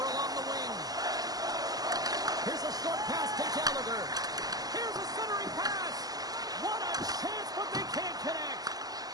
along the wing. Here's a short pass to Gallagher. Here's a centering pass. What a chance, but they can't connect.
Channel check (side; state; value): left; late; 0.18 ms